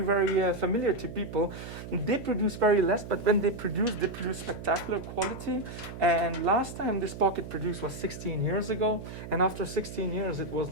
familiar to people. They produce very less, but when they produce spectacular quality. And last time this pocket produced was 16 years ago, and after 16 years it was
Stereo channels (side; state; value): right; noise; hum, 11 dB below the sound